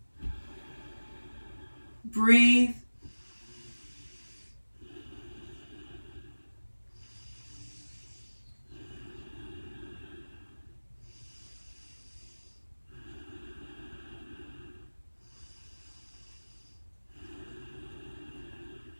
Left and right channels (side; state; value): both; inverted; correlation -1.00